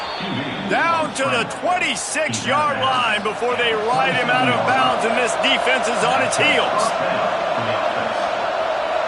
Down to the 26-yard line before they ride him out of bounds, and this defense is on its heels.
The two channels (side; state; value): both; identical; correlation 1.00